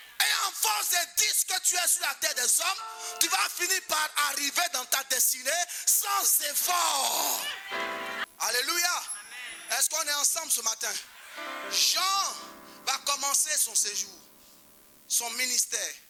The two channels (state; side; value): identical; both; correlation 1.00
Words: Et en force de dire ce que tu es sur la terre des hommes, tu vas finir par arriver dans ta destinée sans effort. Alléluia. Est-ce qu'on est ensemble ce matin? Jean va commencer son séjour, son ministère.